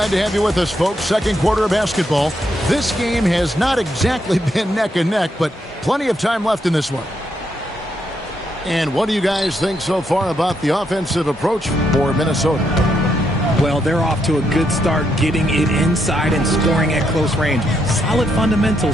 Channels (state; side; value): normal; both; correlation 0.78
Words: to have you with us, folks. Second quarter of basketball. This game has not exactly been neck and neck, but plenty of time left in this one. And what do you guys think so far about the offensive approach for Minnesota? Well, they're off to a good start, getting it inside and scoring at close range. Solid